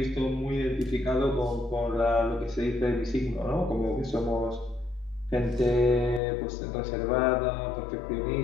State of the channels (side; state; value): right; drops out; at 6.2 s